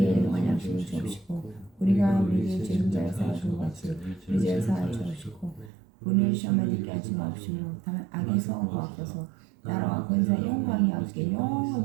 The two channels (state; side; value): drops out; left; at 5.7 s